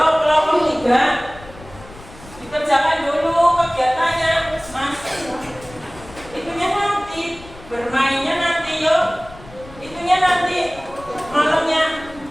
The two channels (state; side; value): noise; left; rumble, 19 dB below the sound